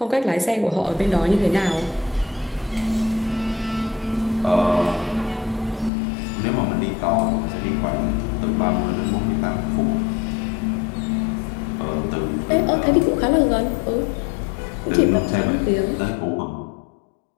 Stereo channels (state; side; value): drops out; right; at 5.9 s